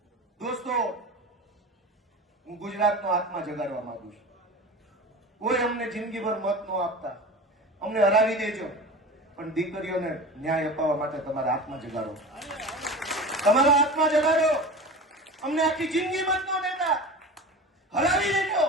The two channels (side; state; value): both; normal; correlation 0.33